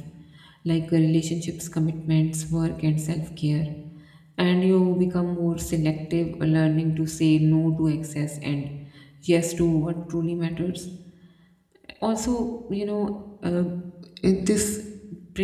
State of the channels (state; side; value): identical; both; correlation 1.00